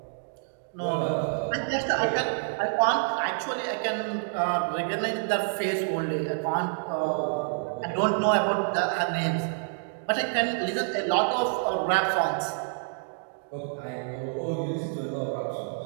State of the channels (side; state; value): left; silent; digital silence